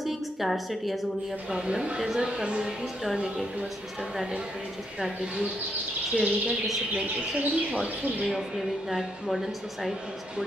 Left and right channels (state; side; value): normal; both; correlation 0.77